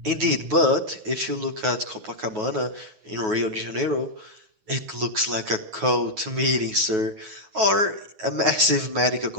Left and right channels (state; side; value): late; left; 9.3 ms